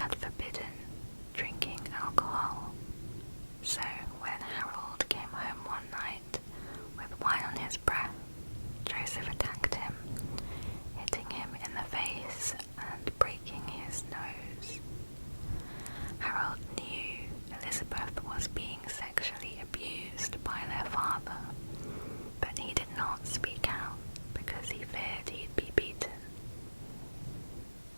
forbidden drinking alcohol, so when Harold came home one night with wine on his breath, Joseph attacked him, hitting him in the face and breaking his nose. Harold knew Elizabeth was being sexually abused by their father, but he did not speak out because he feared he'd be beaten.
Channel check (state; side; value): inverted; both; correlation -1.00